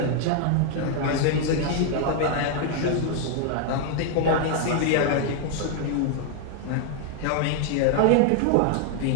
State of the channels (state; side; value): different; both; correlation 0.00